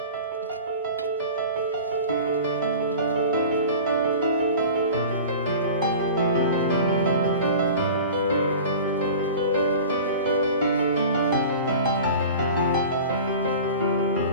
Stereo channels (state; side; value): inverted; both; correlation -0.39